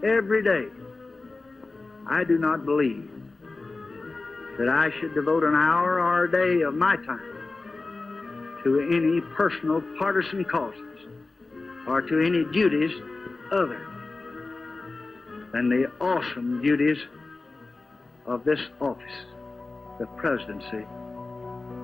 every day, I do not believe that I should devote an hour or a day of my time to any personal partisan causes or to any duties other than the awesome duties of this office, the presidency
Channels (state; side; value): quieter; right; 3.5 dB